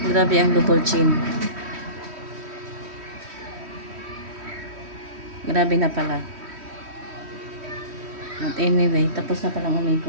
Grabe ang double chin. Grabe na pala. At anyway, tapos na palang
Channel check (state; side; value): late; left; 3.1 ms